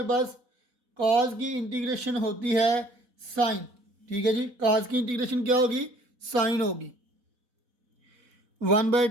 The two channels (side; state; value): left; late; 4.1 ms